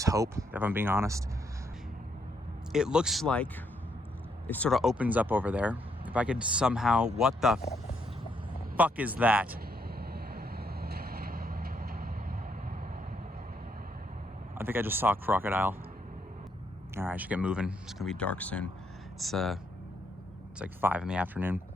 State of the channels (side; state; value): both; normal; correlation 0.74